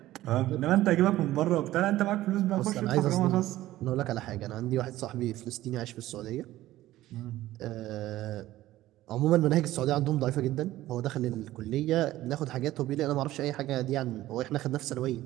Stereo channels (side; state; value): left; quieter; 15.3 dB